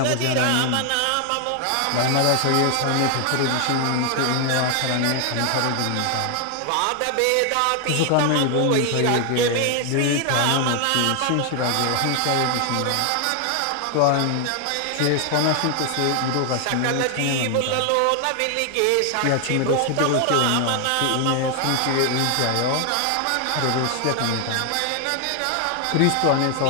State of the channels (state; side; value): different; both; correlation 0.00